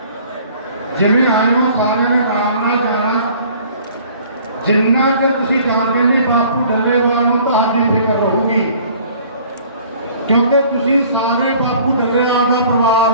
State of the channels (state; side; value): inverted; both; correlation -0.53